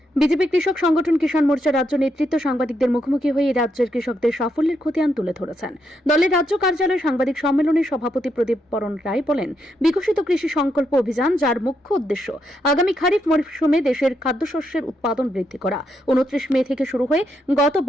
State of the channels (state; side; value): normal; both; correlation 0.79